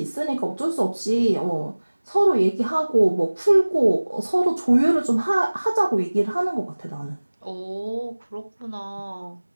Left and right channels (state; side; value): inverted; both; correlation -1.00